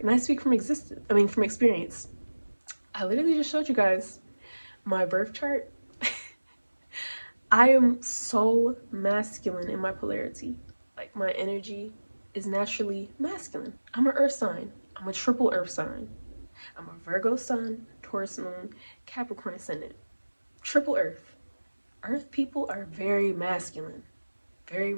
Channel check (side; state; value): both; inverted; correlation -1.00